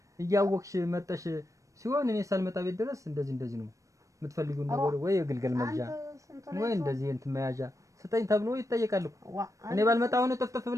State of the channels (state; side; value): late; left; 0.16 ms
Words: እያወቅሽ መጠሽ ሲሆን እኔ ሳልመጣ ቤት ድረስ እንደዚህ ነው የምትፈልጊው ነገር ወይ የግልገል መግዣ ወይ እንደዚህ እንትን መያዣ ስጠኝ ተብሎ ይጠየቃል እኮ። እኔ ባልመጣ ሆነ ጥፍጥፍ